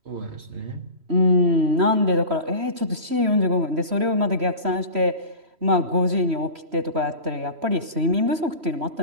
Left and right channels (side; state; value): left; late; 3.1 ms